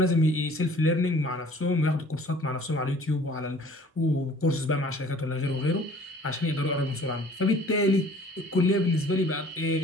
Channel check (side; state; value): both; normal; correlation 0.52